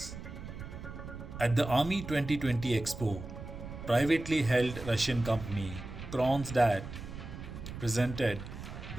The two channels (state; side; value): noise; right; rumble, 10 dB below the sound